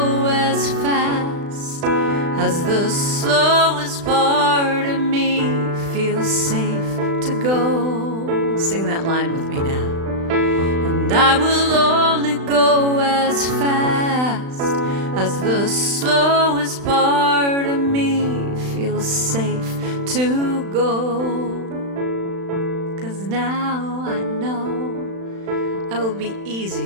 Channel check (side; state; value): left; late; 36 ms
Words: as fast as the slowest part of me feels safe to go. Sing that line with me now. And I will only go as fast as the slowest part of me feels safe to go. 'Cause now I know I will be